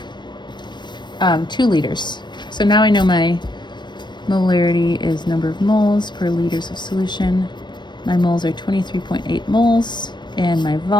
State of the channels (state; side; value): late; right; 0.22 ms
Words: 2 liters. So now I know my molarity is number of moles per liters of solution. My moles are 23.8 moles, and my